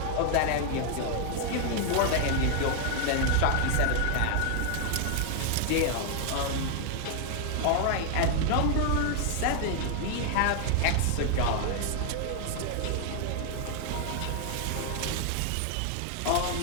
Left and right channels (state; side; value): different; both; correlation 0.00